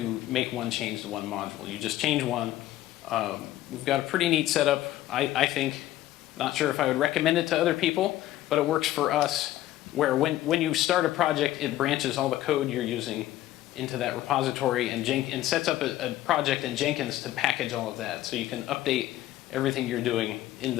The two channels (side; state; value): right; quieter; 14.5 dB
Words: make one change to one module. You just change one. We've got a pretty neat setup, I think. Not sure if I would recommend it to other people, but it works for us, where when you start a project, it branches all the code you're using into that repository and sets up a project in Jenkins to package all of that. So you can update everything you're doing in